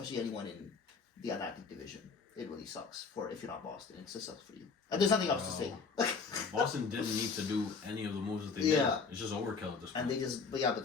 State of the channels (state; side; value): quieter; right; 5.0 dB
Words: anyone in the Atlantic Division, it really sucks for if you're not Boston. It just sucks for you. And there's nothing else to say. Boston didn't need to do any of the moves that they Yeah. did. It's just overkill at this point. And they